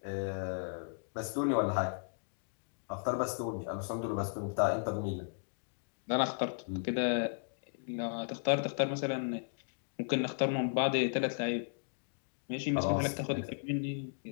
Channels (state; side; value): silent; right; digital silence